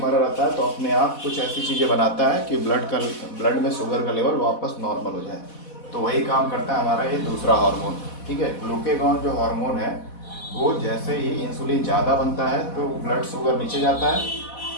रहता है तो अपने आप कुछ ऐसी चीज़ें बनाता है कि ब्लड में शुगर का लेवल वापस नॉर्मल हो जाए। तो वही काम करता है हमारा ये दूसरा हार्मोन। ठीक है। ग्लूकेगॉन जो हार्मोन है वो जैसे ही इंसुलिन ज़्यादा बनता है तो ब्लड शुगर नीचे जाता है,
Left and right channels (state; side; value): late; right; 4.1 ms